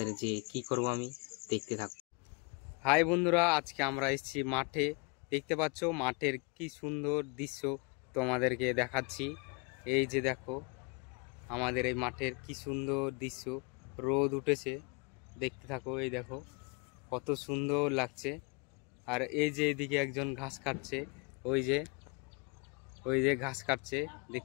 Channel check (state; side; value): quieter; right; 32.2 dB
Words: যে কি করব আমি দেখতে থাকো। হাই বন্ধুরা, আজকে আমরা এসেছি মাঠে। দেখতে পাচ্ছ মাঠের কি সুন্দর দৃশ্য তোমাদেরকে দেখাচ্ছি। এই যে দেখো আমাদের এই মাঠের কি সুন্দর দৃশ্য, রোদ উঠেছে, দেখতে থাকো। এই দেখো কত সুন্দর লাগছে। আর এই যে এদিকে একজন ঘাস কাটছে, ওই যে ঘাস কাটছে,